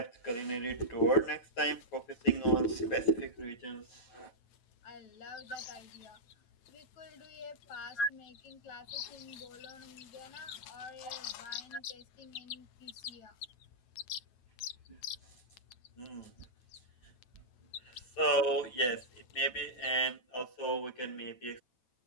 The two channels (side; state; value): right; late; 9.1 ms